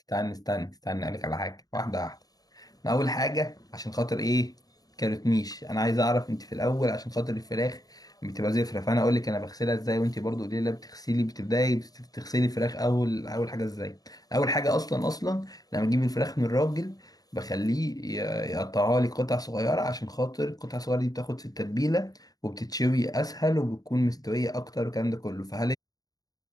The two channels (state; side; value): late; right; 0.18 ms